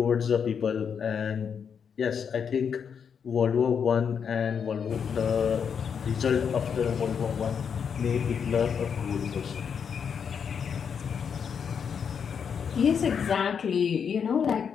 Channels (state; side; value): quieter; right; 7.0 dB